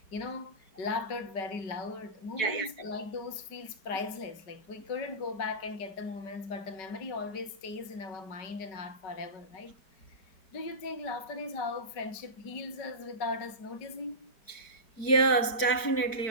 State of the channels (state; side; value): late; right; 4.6 ms